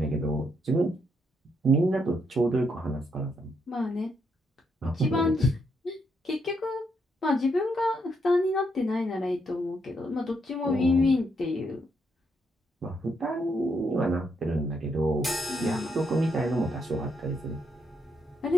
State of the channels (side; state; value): both; normal; correlation 0.77